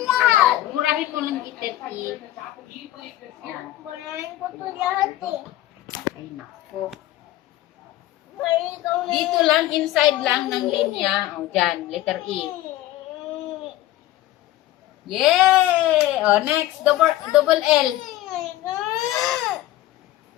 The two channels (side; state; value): right; quieter; 15.1 dB